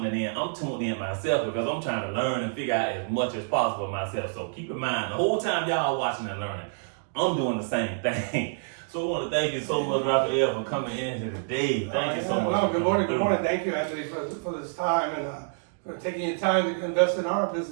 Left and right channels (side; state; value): left; silent; digital silence